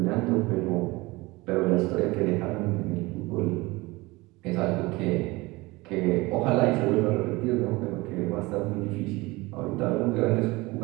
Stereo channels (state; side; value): quieter; left; 22.2 dB